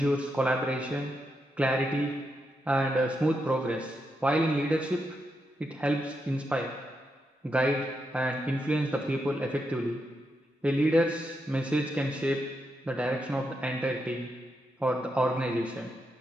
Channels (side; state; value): both; normal; correlation 0.84